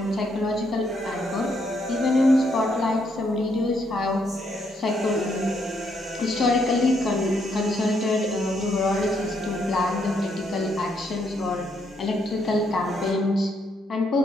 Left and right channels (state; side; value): normal; both; correlation 0.74